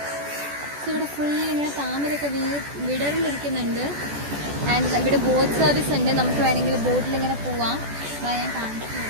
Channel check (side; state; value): left; late; 14 ms